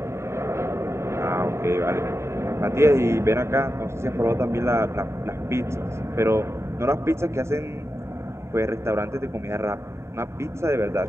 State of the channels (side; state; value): left; late; 0.13 ms